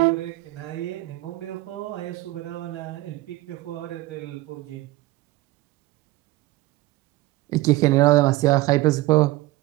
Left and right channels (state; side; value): quieter; left; 18.7 dB